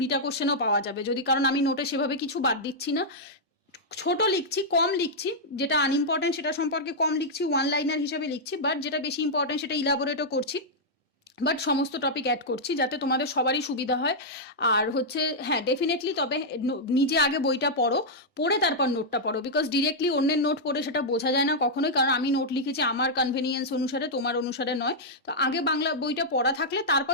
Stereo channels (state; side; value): normal; both; correlation -0.06